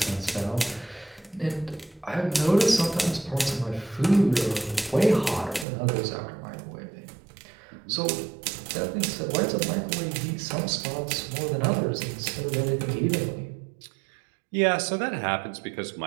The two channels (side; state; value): left; drops out; at 5.7 s